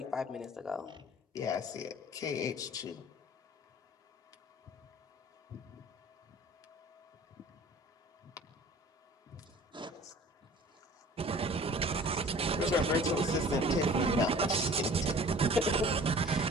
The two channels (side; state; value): both; normal; correlation 0.47